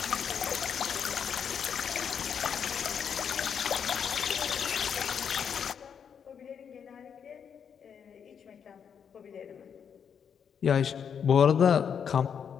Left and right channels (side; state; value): right; quieter; 7.4 dB